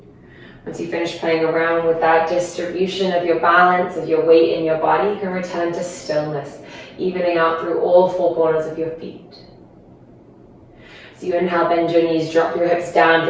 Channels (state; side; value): identical; both; correlation 1.00